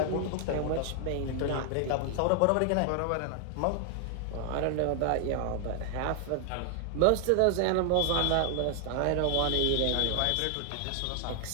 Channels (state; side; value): different; both; correlation 0.00